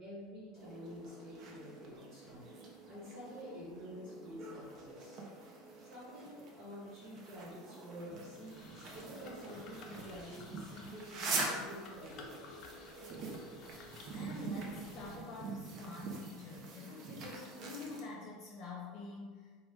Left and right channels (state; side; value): normal; both; correlation 0.35